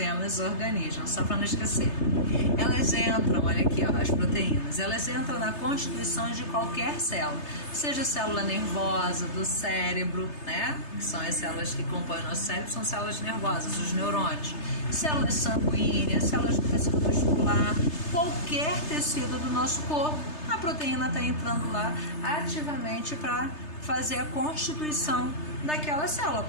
organismos, só para não esquecer. Elas entram, olha aqui, ó, as proteínas, elas entram na constituição de qualquer célula, seja célula nervosa, do cérebro, né? Que são as células que compõem o nosso cérebro, são células nervosas, os neurônios, células sanguíneas, células do tecido muscular, qualquer tecido do nosso corpo, a proteína está entrando lá ativamente para fazer a constituição daquela célula,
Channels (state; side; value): late; right; 3.3 ms